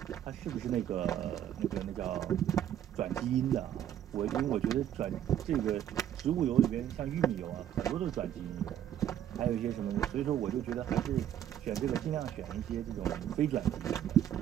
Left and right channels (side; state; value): left; quieter; 10.6 dB